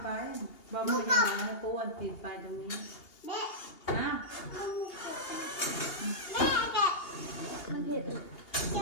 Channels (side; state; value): right; late; 2.8 ms